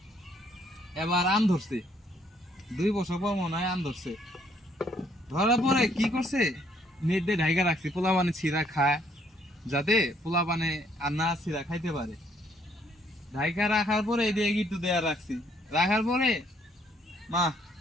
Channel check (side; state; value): both; normal; correlation 0.67